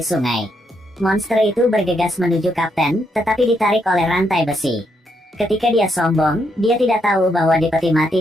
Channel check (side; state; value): both; normal; correlation 0.77